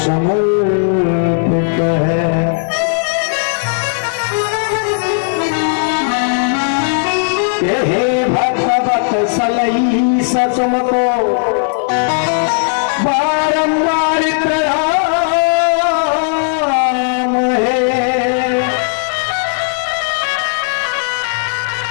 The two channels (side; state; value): right; silent; digital silence